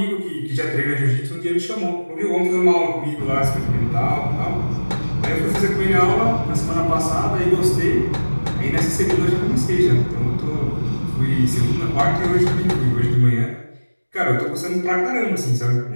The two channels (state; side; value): inverted; both; correlation -1.00